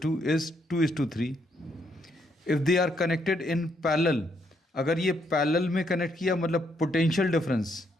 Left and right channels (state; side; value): normal; both; correlation 0.74